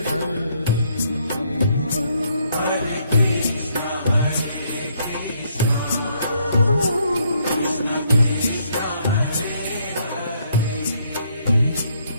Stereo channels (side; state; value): both; inverted; correlation -0.70